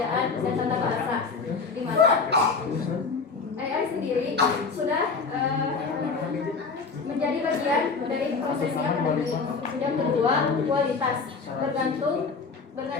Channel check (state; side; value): quieter; right; 4.8 dB